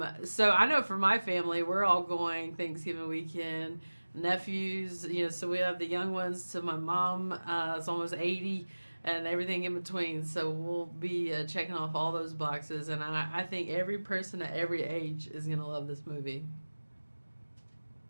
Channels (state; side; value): inverted; both; correlation -1.00